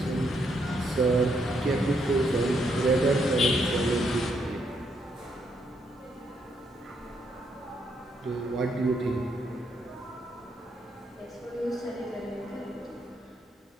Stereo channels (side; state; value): both; normal; correlation 0.75